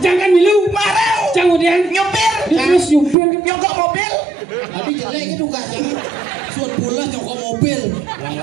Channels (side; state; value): left; drops out; at 3.2 s